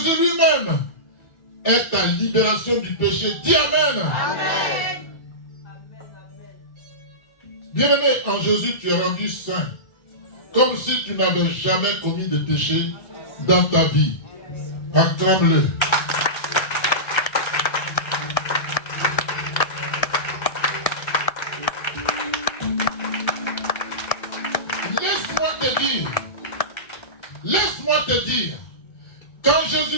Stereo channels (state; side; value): late; right; 1.3 ms